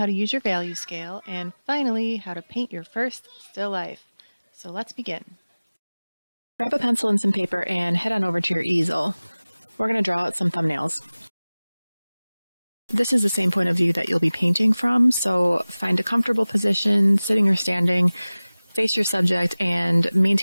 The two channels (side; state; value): both; inverted; correlation -0.99